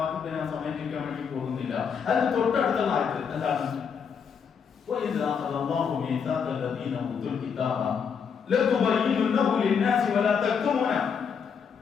ഞാൻ സമയത്തിക്കാൻ വേണ്ടി പോകുന്നില്ല, അതിന് തൊട്ടടുത്തുള്ള ആയത്ത് എന്താണ്?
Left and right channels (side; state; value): right; quieter; 6.6 dB